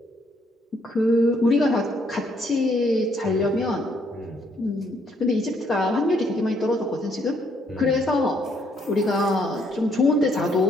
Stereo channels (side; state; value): both; normal; correlation 0.70